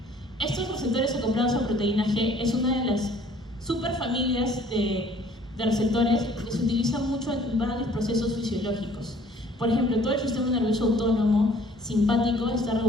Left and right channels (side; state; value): both; normal; correlation 0.56